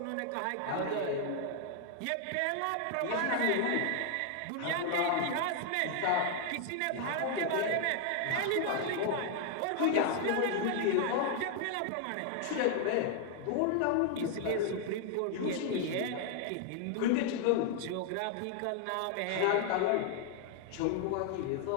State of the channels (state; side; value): different; both; correlation 0.00